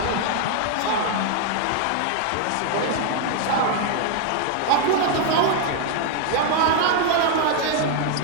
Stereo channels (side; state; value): both; different; correlation 0.00